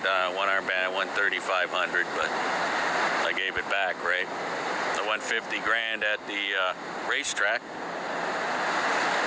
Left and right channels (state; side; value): identical; both; correlation 1.00